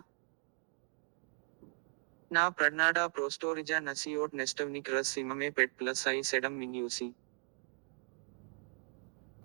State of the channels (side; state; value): left; quieter; 35.8 dB